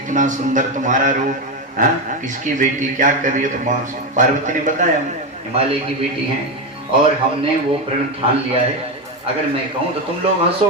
सुंदर तुम्हारा रूप, हाँ किसकी बेटी क्या कर रही है। तो माँ पार्वती ने बताया हम हिमालय की बेटी हैं और हमने वो प्रण ठान लिया है। अगर मैं कहूँ तो तुम लोग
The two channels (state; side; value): normal; both; correlation 0.11